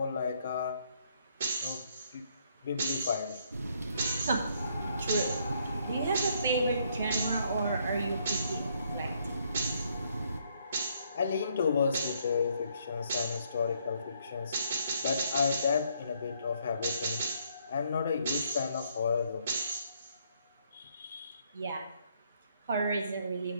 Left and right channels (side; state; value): both; inverted; correlation -0.70